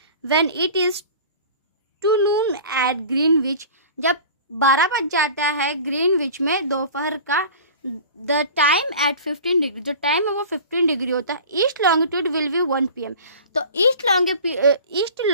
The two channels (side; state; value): both; inverted; correlation -0.40